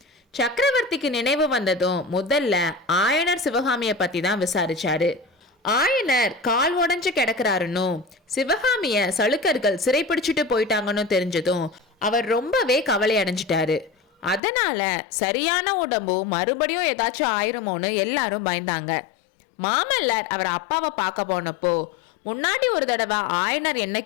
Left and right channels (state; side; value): drops out; right; at 14.4 s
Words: சக்கரவர்த்திக்கு நினைவு வந்ததும் முதல்ல ஆயனர் சிவகாமிய பத்தி தான் விசாரிச்சாரு. ஆயனர் கால் உடஞ்சு கிடக்குறாருன்னு சிவகாமிய சளுக்கர்கள் சிறைப்பிடிச்சிட்டு போயிட்டாங்கன்னு தெரிஞ்சதும் அவர் ரொம்பவே கவலை அடைஞ்சிட்டாரு. அதனால சரியான உடம்பு மறுபடியும் ஏதாச்சும் ஆயிருமோன்னு எல்லாரும் பயந்தாங்க. மாமல்லர் அவர் அப்பாவை பார்க்க போனப்போ முன்னாடி ஒரு தடவை ஆயனர் என்ன